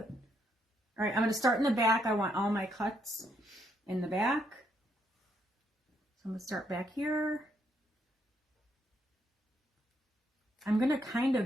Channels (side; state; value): both; normal; correlation 0.74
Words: All right, I'm going to start in the back. I want all my cuts in the back. So I'm going to start back here. I'm going to kind